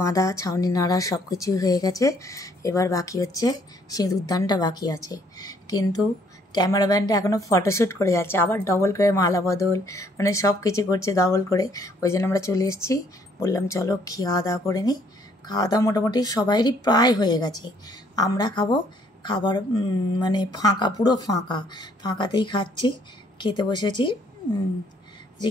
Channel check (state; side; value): normal; both; correlation 0.64